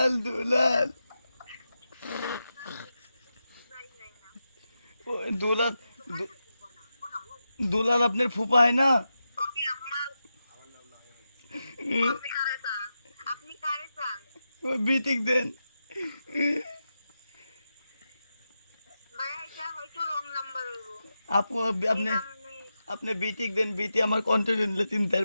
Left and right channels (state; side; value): inverted; both; correlation -0.89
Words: দুলাল। ওই দুলাল দুলাল আপনার ফুপা হয় না? ওকে আপনার আপনি কারে চান? ওই বিটিক দেন। ভাই এটা হয়তো রং নাম্বার হইব। আপু আপনি আপনি বিটিক দেন, বিটি আমার কন্টেন্ট নিলে চিন্তা